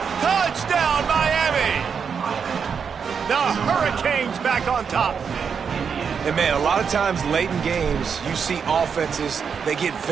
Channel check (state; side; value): quieter; left; 6.5 dB